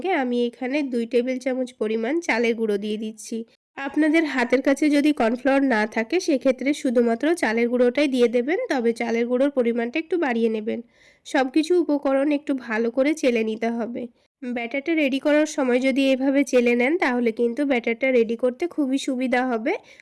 আমি এখানে 2 টেবিল চামচ পরিমাণ চালের গুঁড়ো দিয়ে দিচ্ছি। আপনাদের হাতের কাছে যদি কর্নফ্লাওয়ার না থাকে সেক্ষেত্রে শুধুমাত্র চালের গুঁড়োটাই দিয়ে দেবেন, তবে চালের গুঁড়োর পরিমাণটা একটু বাড়িয়ে নেবেন। সব কিছু উপকরণ একটু ভালো করে চেলে নিতে হবে। ব্যাটারটা রেডি করার সময় যদি এভাবে চেলে নেন তাহলে কিন্তু ব্যাটারটা রেডি করতে খুবই সুবিধা হবে,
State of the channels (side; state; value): both; identical; correlation 1.00